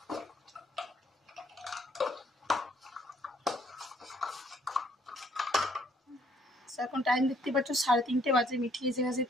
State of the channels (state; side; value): normal; both; correlation 0.65